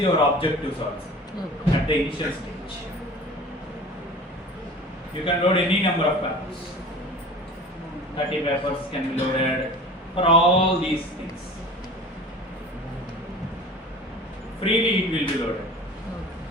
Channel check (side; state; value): both; normal; correlation 0.40